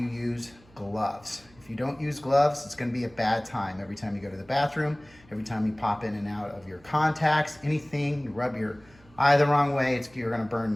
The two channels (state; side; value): noise; right; hum, 27 dB below the sound